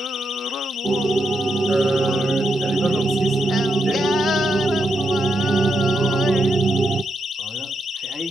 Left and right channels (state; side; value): normal; both; correlation 0.82